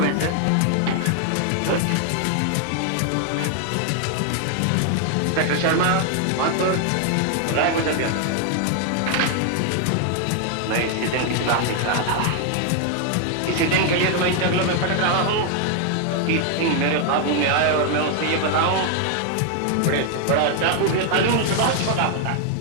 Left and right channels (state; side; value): different; both; correlation 0.00